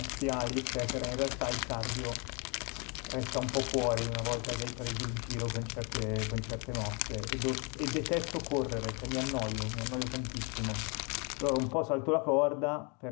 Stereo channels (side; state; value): right; quieter; 32.9 dB